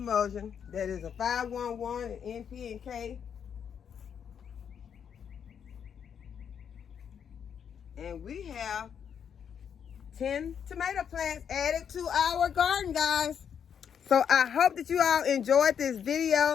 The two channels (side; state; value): right; quieter; 7.9 dB